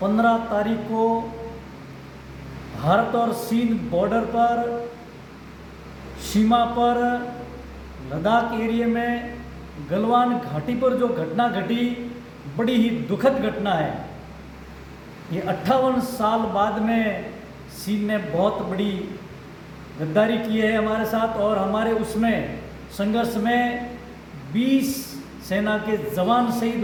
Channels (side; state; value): both; identical; correlation 1.00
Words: 15 तारीख को भारत और चीन बॉर्डर पर, सीमा पर, लद्दाख एरिया में गलवान घाटी पर जो घटना घटी, बड़ी ही दुखद घटना है। ये 58 साल बाद में चीन ने बहुत बड़ी गद्दारी की है हमारे साथ, और हमारे उसमें संघर्ष में 20 सेना के जवान शहीद